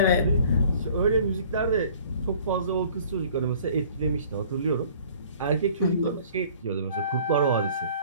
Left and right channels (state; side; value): inverted; both; correlation -0.52